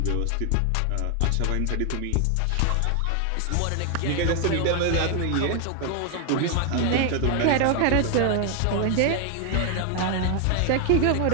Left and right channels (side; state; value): both; different; correlation 0.00